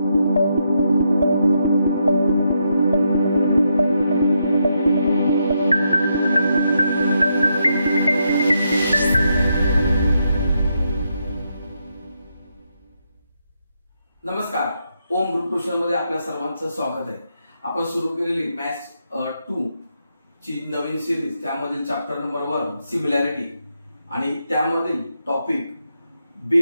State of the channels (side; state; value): both; inverted; correlation -0.81